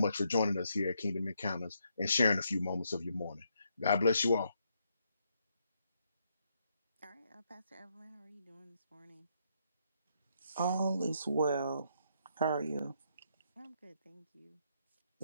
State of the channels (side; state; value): both; inverted; correlation -0.76